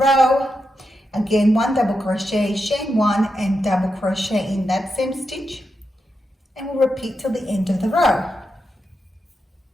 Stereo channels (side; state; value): both; normal; correlation 0.86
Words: Again, 1 double crochet, chain 1 and double crochet in that same stitch, and we'll repeat till the end of the row.